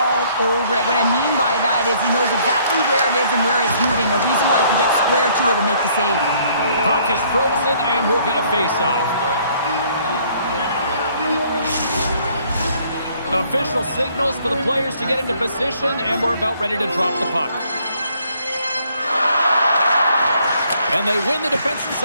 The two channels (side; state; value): both; inverted; correlation -0.63